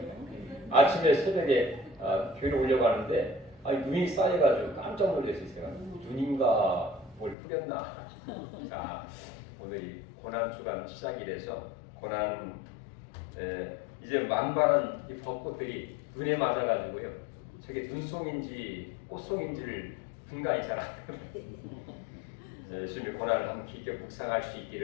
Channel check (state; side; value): drops out; right; at 7.4 s